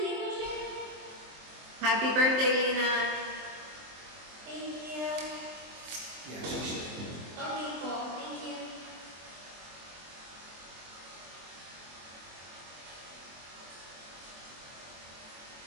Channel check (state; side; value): late; left; 23 ms